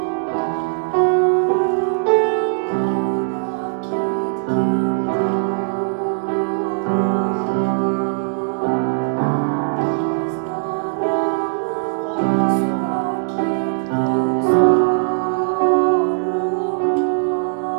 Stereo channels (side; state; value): left; silent; digital silence